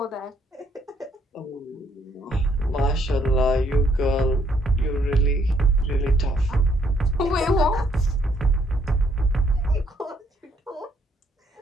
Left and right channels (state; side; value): normal; both; correlation 0.69